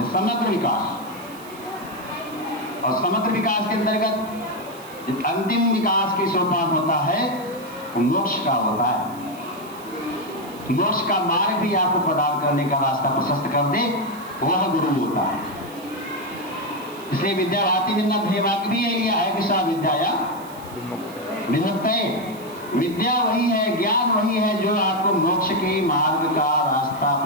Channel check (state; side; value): noise; right; hiss, 21 dB below the sound